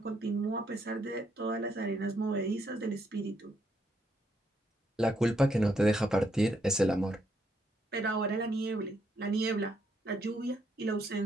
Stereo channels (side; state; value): both; normal; correlation 0.75